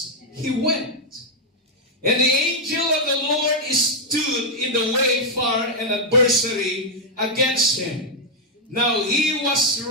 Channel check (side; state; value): both; normal; correlation -0.02